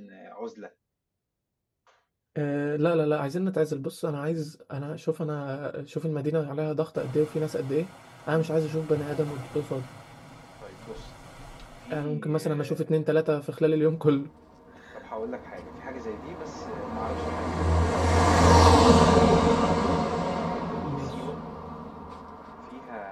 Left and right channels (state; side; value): identical; both; correlation 1.00